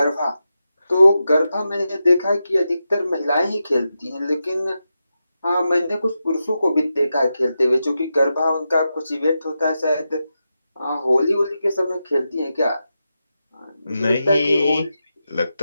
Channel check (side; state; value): both; inverted; correlation -0.89